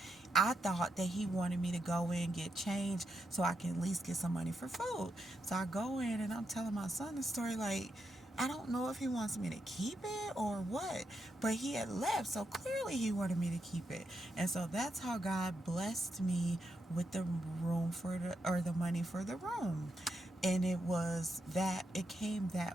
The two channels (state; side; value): normal; both; correlation 0.83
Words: I thought that he wanted me to go in, get change so I can at least get some money for food. So I go in and I'm telling my son the story like, I don't know if he wants me to keep it or what, but he had left, so clearly he wanted me to keep it. And so that's how God blessed me with the room or the money for the room. And it came